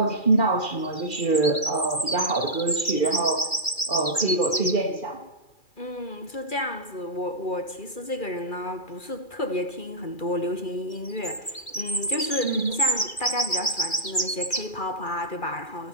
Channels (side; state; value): right; late; 2.4 ms